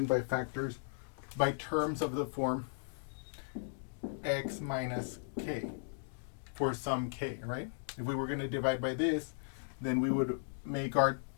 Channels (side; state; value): right; silent; digital silence